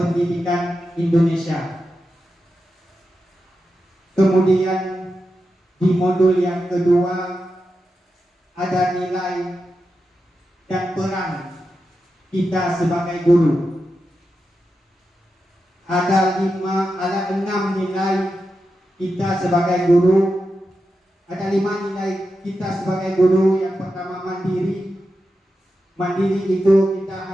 Indonesia. Kemudian di modul yang kedua ada nilai dan peran kita sebagai guru. Ada 6 nilai kita sebagai guru. Ada 5 nilai kita sebagai guru. Yang pertama mandiri. Mandiri itu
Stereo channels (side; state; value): both; normal; correlation 0.89